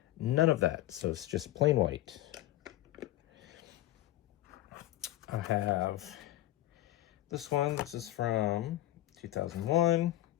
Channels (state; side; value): quieter; right; 15.2 dB